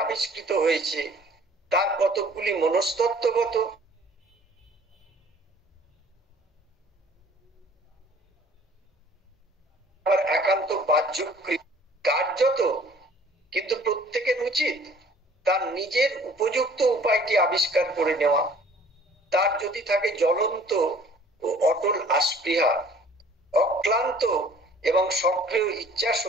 আবিষ্কৃত হয়েছে। তার কতকগুলি মনস্তত্ত্বগত, আবার একান্ত বাহ্যক্রিয়া কার্যত, কিন্তু প্রত্যেকের উচিত তার নিজের উপযুক্ত উপায়টি আবিষ্কার করে নেওয়া। তার যদি থাকে জ্বলন্ত ও অটল আস্পৃহা, অক্লান্ত এবং সক্রিয় ইচ্ছা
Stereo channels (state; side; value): normal; both; correlation 0.53